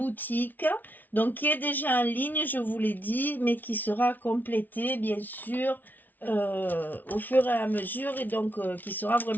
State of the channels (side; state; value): right; late; 0.084 ms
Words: donc qui est déjà en ligne, je vous l'ai dit, mais qui sera complétée bien sûr au fur et à mesure et donc qui sera